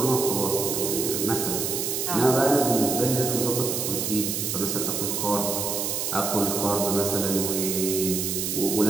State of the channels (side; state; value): right; noise; hiss, 1 dB below the sound